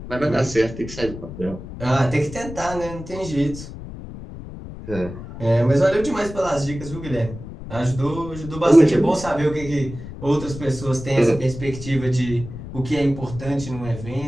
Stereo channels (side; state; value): left; noise; rumble, 12 dB below the sound